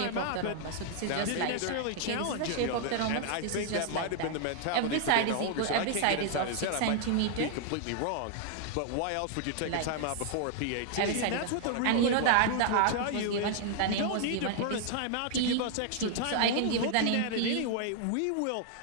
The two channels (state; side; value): different; both; correlation 0.00